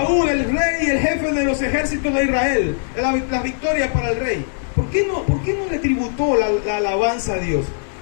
el rey, el jefe de los ejércitos de Israel, las victorias para el rey. ¿Por qué no le tributó la alabanza a Dios?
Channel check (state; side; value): silent; right; 63 dB below the other